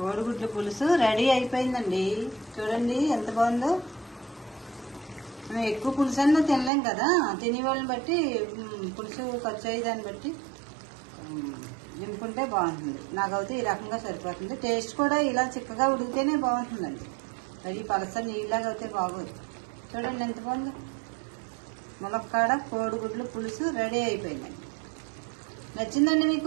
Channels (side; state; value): left; drops out; at 6.7 s